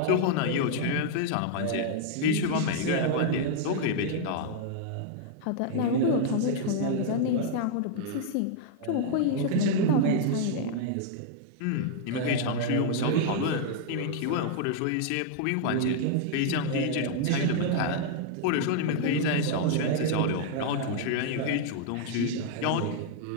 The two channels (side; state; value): both; different; correlation -0.01